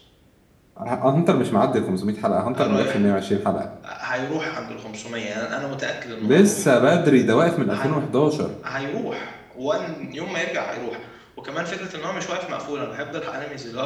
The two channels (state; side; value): identical; both; correlation 1.00